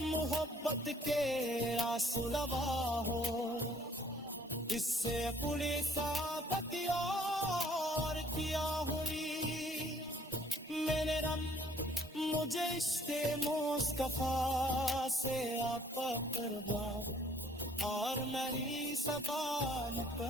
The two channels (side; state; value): both; normal; correlation 0.60